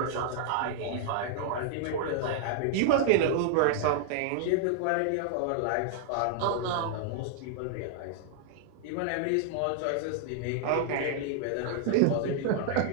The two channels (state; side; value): different; both; correlation -0.01